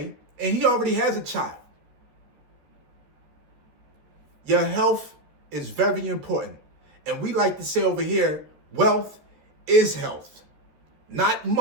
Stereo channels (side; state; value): left; late; 13 ms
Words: and he already has a child. Your health is very important. And we like to say over here, wealth is health, not